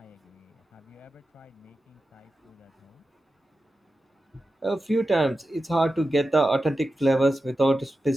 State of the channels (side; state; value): both; normal; correlation 0.92